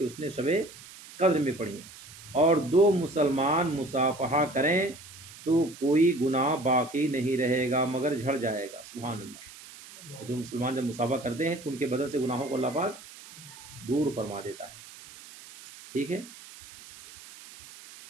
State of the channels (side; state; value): right; noise; hiss, 18 dB below the sound